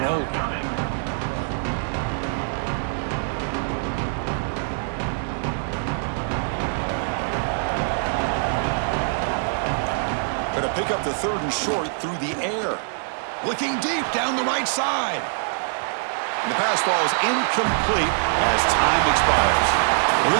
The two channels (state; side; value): silent; left; digital silence